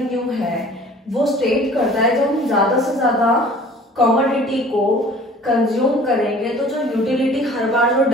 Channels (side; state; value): both; normal; correlation 0.48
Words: है वो स्टेट करता है जब हम ज्यादा से ज्यादा कमोडिटी को कंज्यूम करेंगे तो जो यूटिलिटी हर बार जो